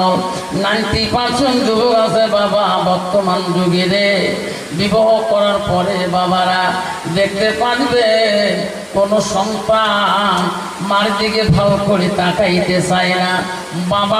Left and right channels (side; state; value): both; identical; correlation 1.00